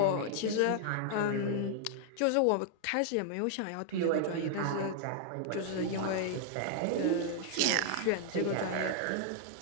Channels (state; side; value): different; both; correlation -0.01